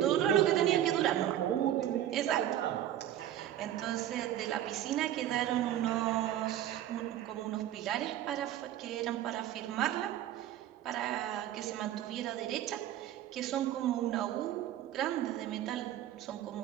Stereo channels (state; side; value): quieter; left; 12.0 dB